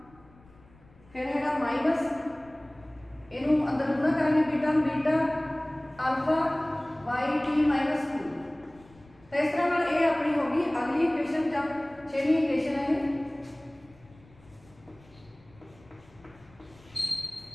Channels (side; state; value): left; noise; rumble, 27 dB below the sound